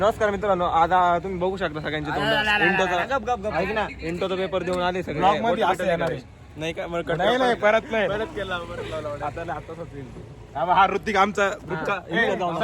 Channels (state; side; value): identical; both; correlation 1.00